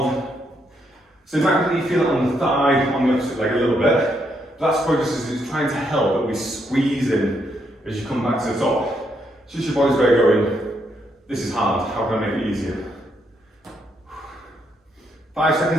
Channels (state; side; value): normal; both; correlation 0.76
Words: So it might be that you feel it on the thigh, on the opposite leg a little bit. That's probably just as it's trying to help that we squeeze in as you come back to the top. It's just your body's way going, this is hard, how can I make it easier? 5